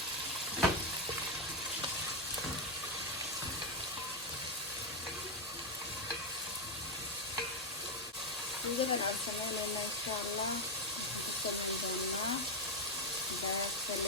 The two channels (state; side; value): normal; both; correlation 0.04